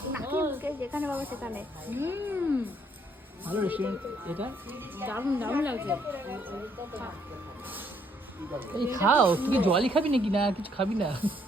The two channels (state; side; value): normal; both; correlation 0.69